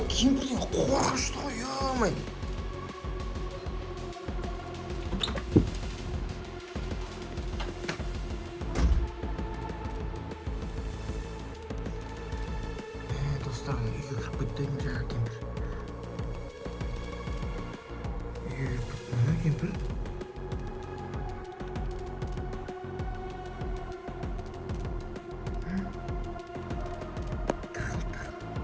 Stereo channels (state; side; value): identical; both; correlation 1.00